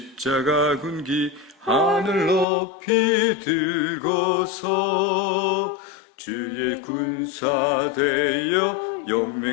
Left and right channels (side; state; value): right; drops out; at 2.5 s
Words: 군기 하늘 높이 들고서 주의 군사 되어